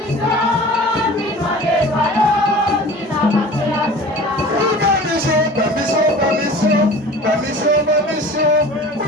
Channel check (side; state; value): both; normal; correlation 0.41